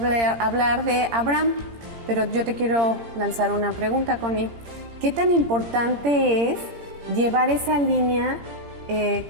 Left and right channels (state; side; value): late; left; 17 ms